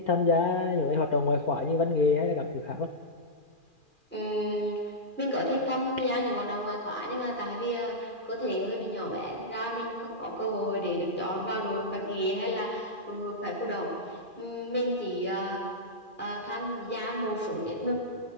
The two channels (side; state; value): right; late; 2.4 ms